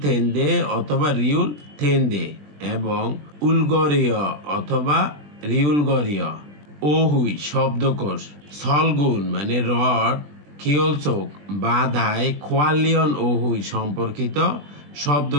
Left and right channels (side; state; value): left; late; 20 ms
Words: থেন্দে অথবা রিউল থেন্দে এবং উলগরীয় অথবা রিউলগরীয়। ওহুই শব্দকোষ, সলগুন মানে রড, খিওলচোক বাধায়, খোয়ালিয়ন ওহুই সম্পর্কিত